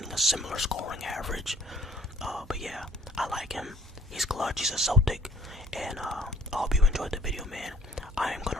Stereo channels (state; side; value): normal; both; correlation 0.57